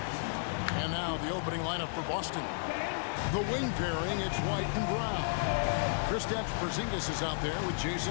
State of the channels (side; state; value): right; silent; digital silence